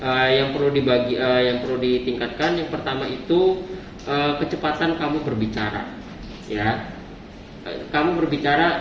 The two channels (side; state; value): both; identical; correlation 1.00